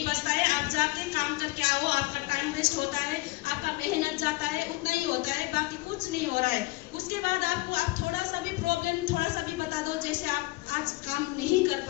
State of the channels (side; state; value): right; quieter; 21.9 dB